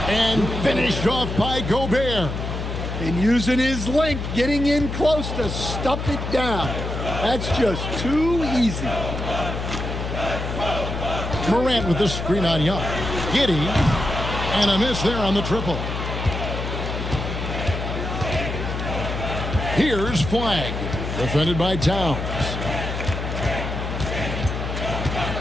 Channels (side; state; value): left; noise; hum, 4 dB below the sound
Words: And finished off by Gobert. And using his length, getting in close to stuff it down. That's just too easy. Morant with the screen on Young. Giddey. And a miss there on the triple. Here's Flag. Defended by Towns.